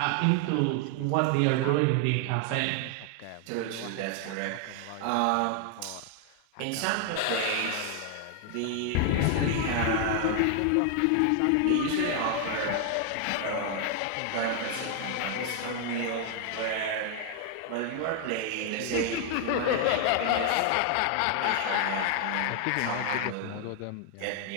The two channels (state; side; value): different; both; correlation 0.00